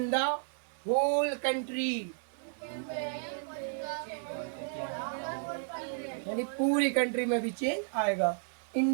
the whole country? यानी पूरी कंट्री में भी चेंज आएगा।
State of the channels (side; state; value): left; silent; 56 dB below the other